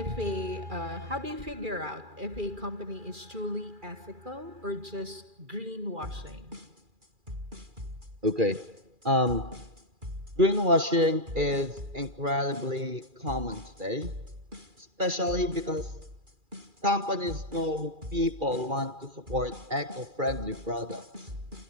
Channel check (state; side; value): late; left; 2.4 ms